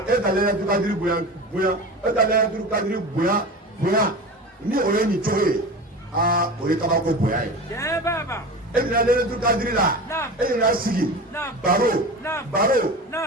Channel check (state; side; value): normal; both; correlation 0.31